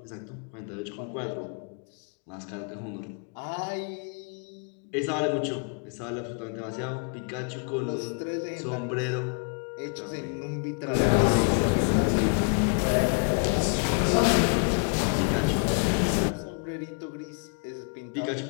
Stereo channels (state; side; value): quieter; right; 39.6 dB